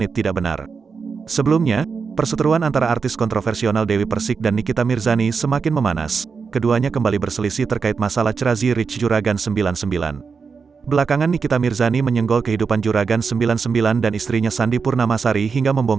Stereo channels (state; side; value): quieter; left; 5.4 dB